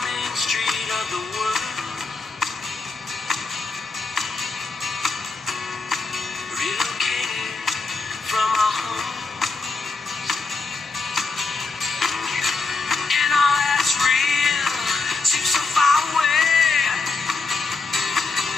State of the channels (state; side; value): quieter; right; 4.0 dB